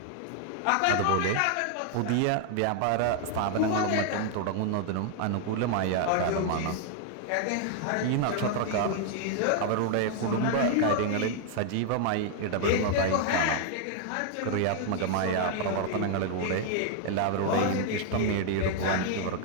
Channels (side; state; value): both; different; correlation 0.00